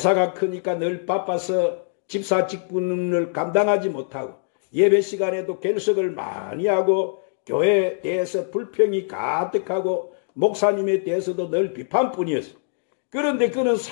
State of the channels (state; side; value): silent; right; digital silence